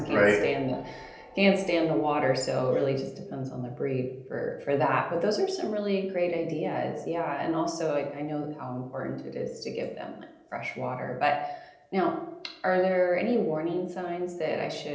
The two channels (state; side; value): identical; both; correlation 1.00